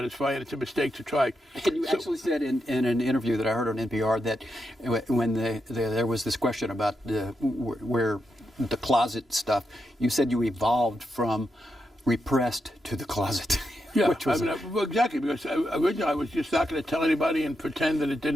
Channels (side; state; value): both; normal; correlation 0.85